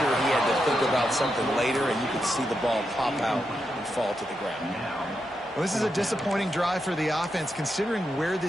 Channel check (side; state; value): both; normal; correlation 0.85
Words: he had to think about something later, and you could see the ball pop out and fall to the ground. Well, this is a disappointing drive for the offense, considering where